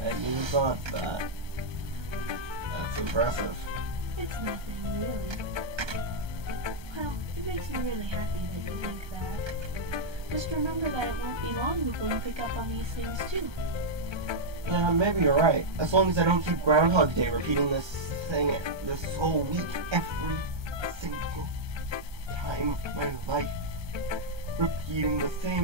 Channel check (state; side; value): late; left; 1.3 ms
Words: never thought that. That's impressive. It's nothing, really. Well, it makes me really happy that you think that. Just remember that it won't be long before you pick up on these things, too. Yeah, maybe you're right. As long as I don't keep Groundhog Day repeating this thing this whole week every single time of my life. Repeating the